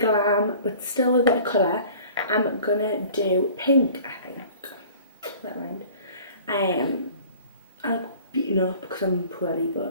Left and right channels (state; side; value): inverted; both; correlation -0.47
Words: but still a bit of colour. I'm gonna do pink, I think. That rhymed. I'll beaten up because I'm poorly,